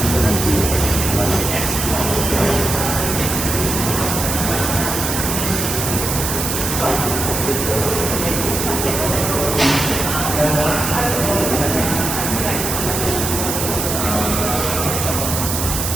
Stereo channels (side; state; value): right; noise; hiss, 2 dB below the sound